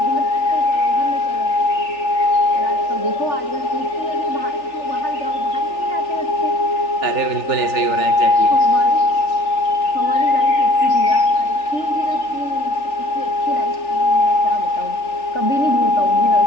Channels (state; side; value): late; right; 3.4 ms